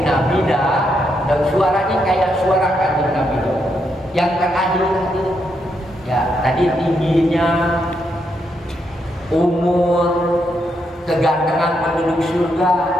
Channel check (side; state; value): both; normal; correlation 0.79